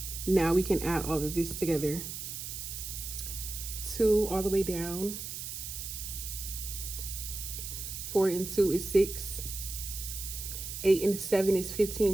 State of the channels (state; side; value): noise; right; hiss, 7 dB below the sound